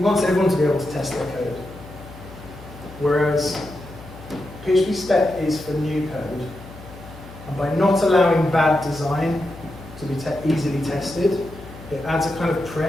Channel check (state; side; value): noise; left; hum, 17 dB below the sound